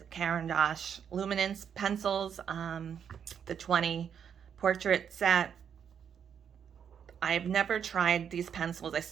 Caran Luminance pencils, the 20 portrait set. I've never tried these pencils. I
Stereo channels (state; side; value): quieter; left; 7.9 dB